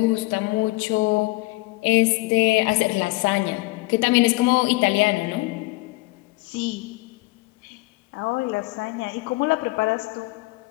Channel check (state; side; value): quieter; right; 22.9 dB